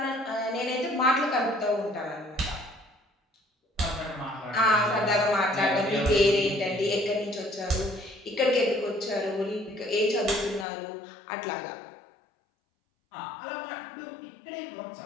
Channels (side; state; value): right; drops out; at 10.7 s